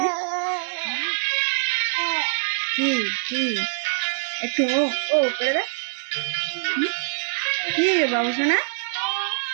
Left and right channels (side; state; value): left; silent; digital silence